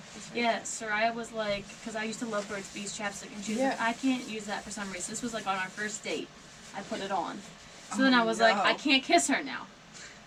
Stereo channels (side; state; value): both; identical; correlation 1.00